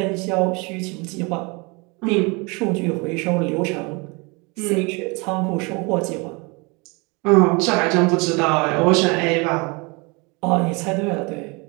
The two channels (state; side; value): quieter; left; 28.7 dB